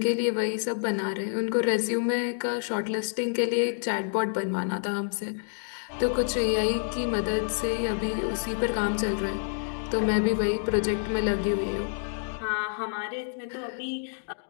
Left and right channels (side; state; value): right; silent; digital silence